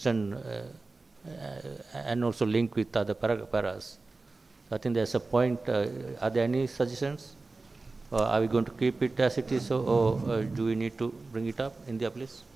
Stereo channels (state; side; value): quieter; left; 3.6 dB